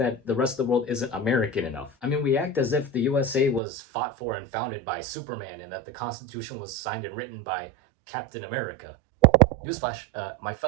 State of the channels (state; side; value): drops out; left; at 3.6 s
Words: the rest of the world isn't American enough. I mean, we act as if the USA was fought for and founded by Superman, and that the Constitution was signed and written by Captain America. Newsflash, my